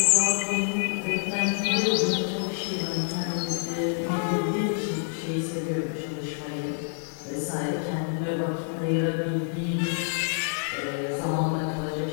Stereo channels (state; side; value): silent; right; 60 dB below the other